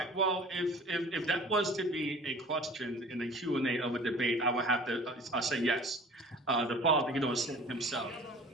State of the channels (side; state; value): both; normal; correlation 0.45